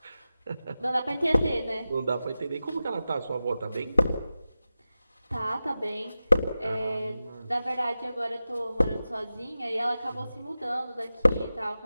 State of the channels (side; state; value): both; inverted; correlation -0.93